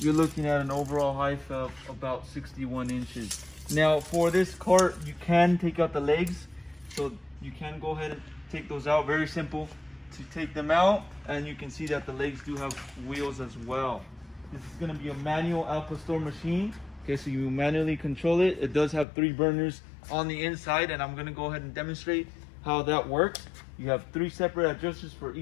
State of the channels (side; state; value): right; drops out; at 19.1 s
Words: looking at an overall height of about 61 inches. Now for this cart, you can take out the legs, so you can go ahead and take those out. Very simple to take them out, and you can see that the legs do have wheels as well. This is going to be a manual Al Pastor machine. Okay, so you manually control it. It does have 3 burners on the inside, and I'm going to go ahead and demonstrate how that works. You have 3 separate adjusters for